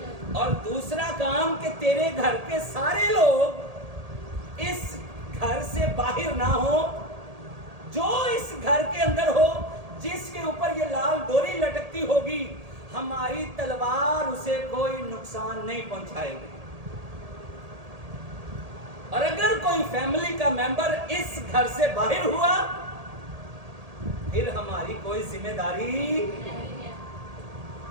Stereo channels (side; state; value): left; late; 1.8 ms